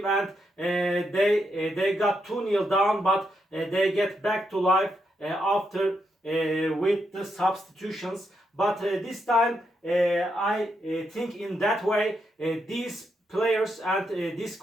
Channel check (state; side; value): normal; both; correlation 0.81